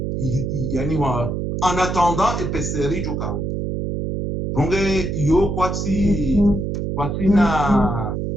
Yani wa en attendant EPCR jukao. Donc yo kwati na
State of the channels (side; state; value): right; noise; hum, 2 dB below the sound